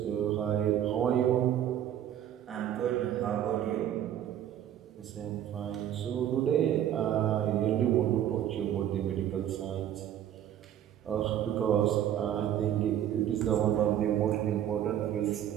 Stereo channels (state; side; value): quieter; left; 10.8 dB